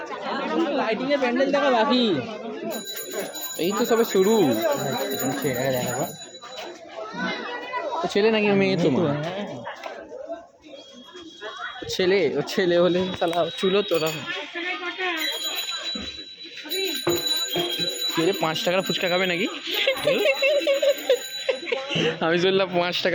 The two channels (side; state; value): both; identical; correlation 1.00